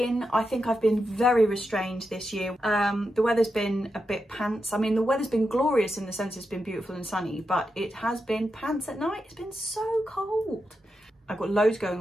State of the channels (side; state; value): both; normal; correlation 0.87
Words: I think I've been very restrained this year. The weather's been a bit pants. I mean, the weather's been glorious in the sense it's been beautiful and sunny, but it has been pants at night. It's been so cold. I've got loads